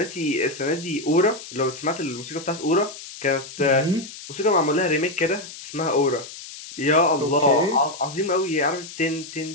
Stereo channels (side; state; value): left; noise; hiss, 14 dB below the sound